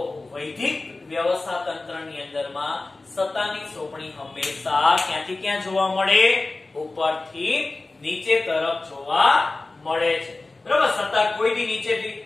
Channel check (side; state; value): right; quieter; 3.3 dB